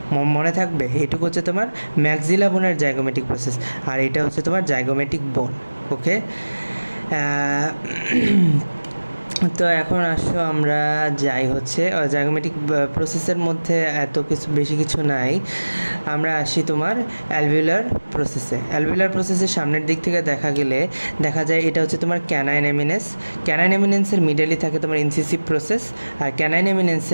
মনে থাকবে, এইটুকু হচ্ছে তোমার ম্যাক্সিলা বোনের জাইগোমেটিক প্রসেস, আর এটা হচ্ছে তোমার জাইগোমেটিক বোন। ওকে, তো এখন আসো আমরা যাই হচ্ছে জাইগোমেটিক প্রসেসের মধ্যে এত কিছু বেশি কিছু নাই, আমরা আসি তোমার অ্যালভিউলার প্রসেসে। অ্যালভিউলার প্রসেসের সামনের দিক থেকে দেখা যায় এটা হচ্ছে তোমার ক্যানাইন এমিনেন্সের মিডলে থাকে তোমার ইনসিসিভ প্রসেস, আর ক্যানাইন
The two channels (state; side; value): inverted; both; correlation -1.00